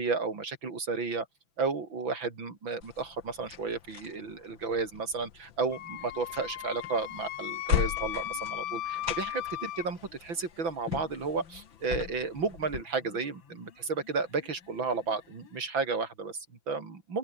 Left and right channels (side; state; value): left; late; 6.0 ms